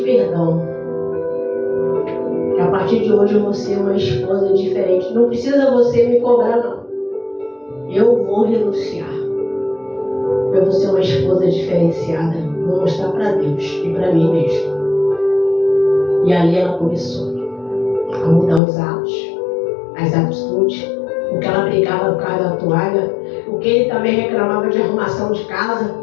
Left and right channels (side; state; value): right; drops out; at 18.6 s